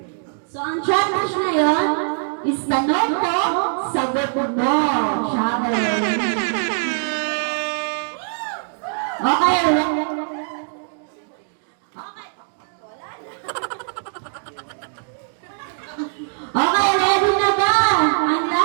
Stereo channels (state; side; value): silent; left; digital silence